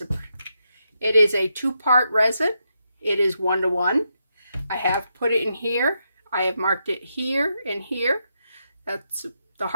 It is a 2-part resin. It is 1-to-1. I have put it in here. I have marked it here and here. That's the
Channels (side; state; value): both; inverted; correlation -0.83